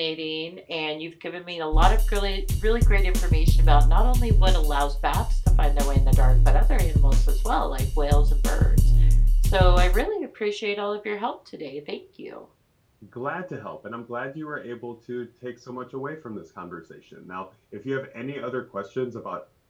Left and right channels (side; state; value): both; identical; correlation 1.00